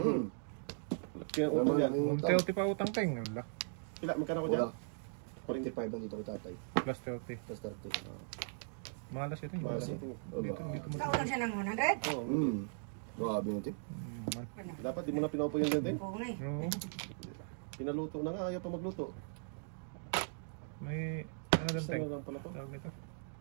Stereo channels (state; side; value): silent; left; digital silence